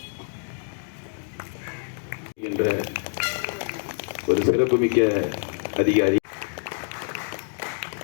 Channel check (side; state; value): right; silent; 61 dB below the other